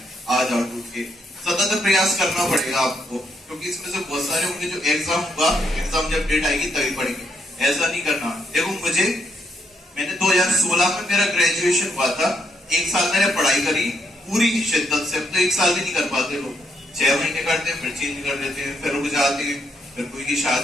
आ जाओ टूट के। सतत प्रयास करना पड़ेगा आपको, क्योंकि इसमें से बहुत सारे होंगे जो एग्जाम हुआ, एग्जाम जब डेट आएगी तभी पढ़ेंगे, ऐसा नहीं करना। देखो मैंने 2016 में मेरा ग्रेजुएशन हुआ था, एक साल मैंने पढ़ाई करी पूरी शिद्दत से। अब तो एक साल भी नहीं कर पाते लोग, 6 महीने करते हैं, फिर चेंज कर देते हैं, फिर रुक जाते हैं, फिर कोई की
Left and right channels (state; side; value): normal; both; correlation 0.76